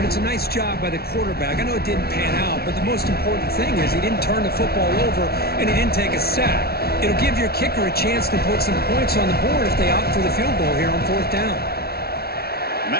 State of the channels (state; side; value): late; right; 0.45 ms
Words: it's a nice job by the quarterback. I know it didn't pan out, but the most important thing is he didn't turn the football over and he didn't take a sack. It'll give your kicker a chance to put some points on the board if they opt for the field goal here on fourth down. And